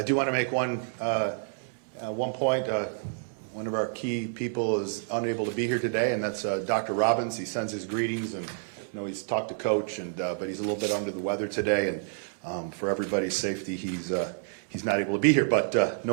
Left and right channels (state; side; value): silent; left; digital silence